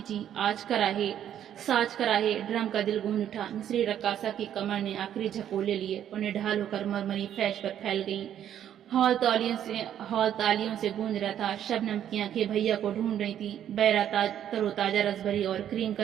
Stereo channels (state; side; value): quieter; left; 10.3 dB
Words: आज कराहे साज कराहे ड्रम का दिल गूंज उठा। मिस्री रक्कासा की कमर ने आखिरी झकोले लिए और निढाल होकर मरमरी फैश पर फैल गई। हॉल तालियों से गूंज रहा था। शबनम की आंखें भैया को ढूंढ रही थी। बैरा तरोताजा रसभरी और क्रीम